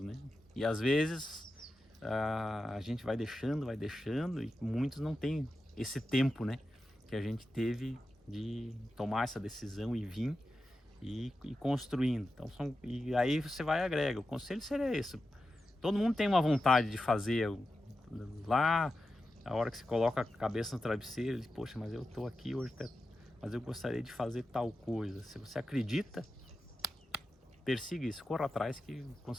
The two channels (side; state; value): both; normal; correlation 0.91